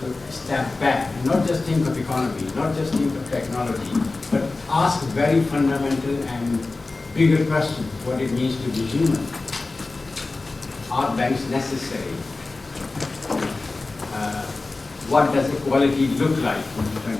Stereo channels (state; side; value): quieter; right; 3.5 dB